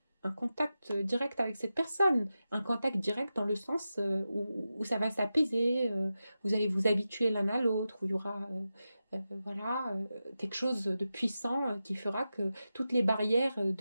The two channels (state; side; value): inverted; both; correlation -0.92